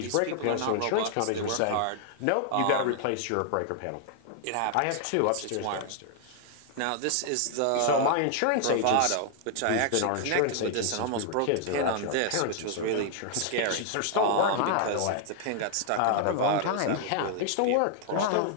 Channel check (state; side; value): different; both; correlation 0.00